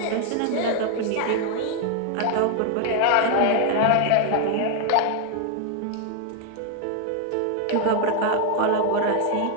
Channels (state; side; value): different; both; correlation 0.00